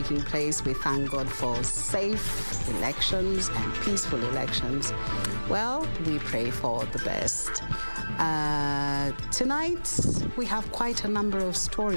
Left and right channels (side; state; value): both; inverted; correlation -1.00